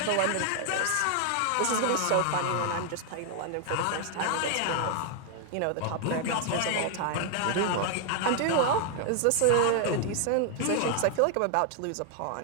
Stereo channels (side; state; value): both; different; correlation 0.00